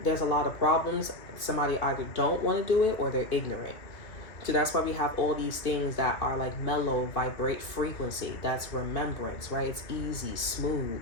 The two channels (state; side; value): late; right; 2.4 ms